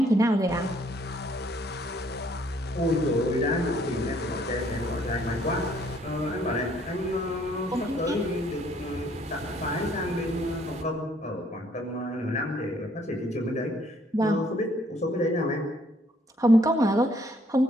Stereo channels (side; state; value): both; normal; correlation 0.64